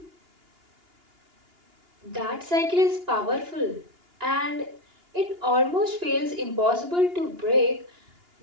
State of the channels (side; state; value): left; late; 2.8 ms